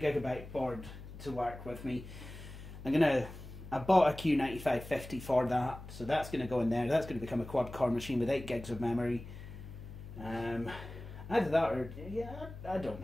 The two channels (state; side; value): noise; left; hum, 13 dB below the sound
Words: Gigabyte board to work with me. I bought a Q9550 for that, so that's going to go in there. That's going to become a quad-core machine with 8 gigs of memory. Either that or, yeah, I don't